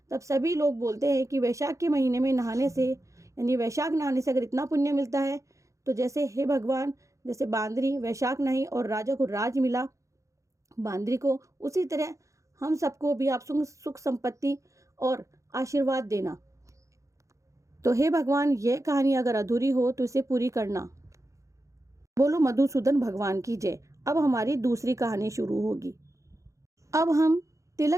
तब सभी लोग बोलते हैं कि वैशाख के महीने में नहाने से, यानी वैशाख नहाने से अगर इतना पुण्य मिलता है तो जैसे हे भगवान, जैसे बांदरी वैशाख नहाई और राजा को राज मिला बांदरी को, उसी तरह हम सबको भी आप सुख संपत्ति और आशीर्वाद देना। तो हे भगवान, यह कहानी अगर अधूरी हो तो इसे पूरी करना। बोलो मधुसूदन भगवान की जय। अब हमारी दूसरी कहानी शुरू होगी। अब हम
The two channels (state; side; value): late; left; 0.15 ms